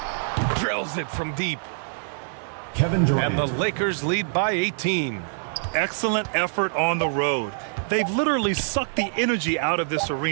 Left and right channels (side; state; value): left; silent; 62 dB below the other